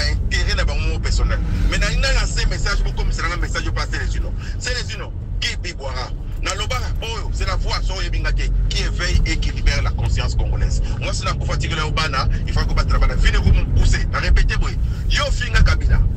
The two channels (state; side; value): identical; both; correlation 1.00